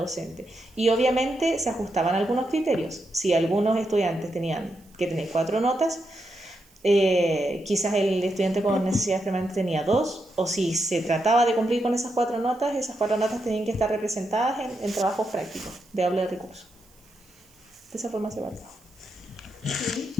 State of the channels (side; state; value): right; noise; hiss, 30 dB below the sound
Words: Y obviamente se ajustaban algunos criterios. Si algunos estudiantes tenían que tener 4 notas, quizás el estudiante con necesidades permanentes tenía 2, o si se trataba de cumplir con esas 4 notas tenían que estar representadas en trabajos prácticos de aula de recursos. De esa forma se evaluaba. Sí.